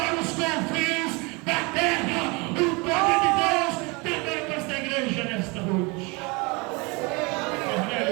os confins da terra. O poder de Deus também para esta igreja nesta noite.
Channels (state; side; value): quieter; left; 28.0 dB